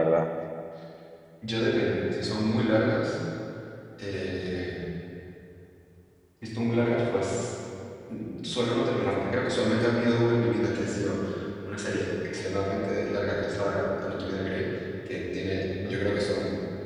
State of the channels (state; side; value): identical; both; correlation 1.00